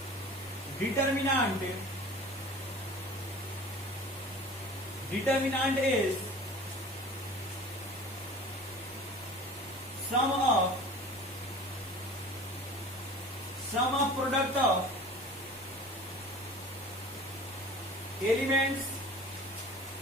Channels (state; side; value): normal; both; correlation 0.42